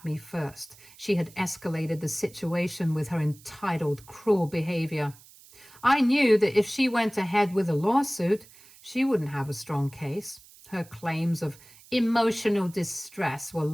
me first. She had escalated the situation with her entitled, cruel behavior. I knew that if she went ahead with a lawsuit, she wouldn't have a strong case. Her claims of emotional distress were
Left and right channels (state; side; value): noise; right; hiss, 23 dB below the sound